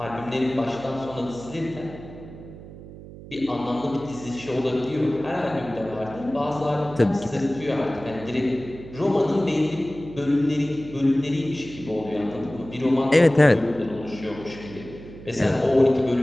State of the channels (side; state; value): right; noise; hum, 15 dB below the sound